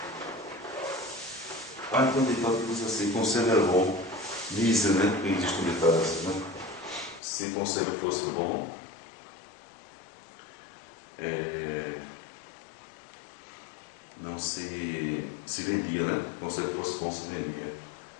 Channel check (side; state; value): right; drops out; at 7.2 s